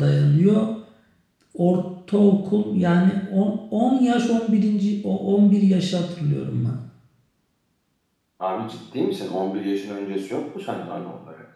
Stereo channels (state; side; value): identical; both; correlation 1.00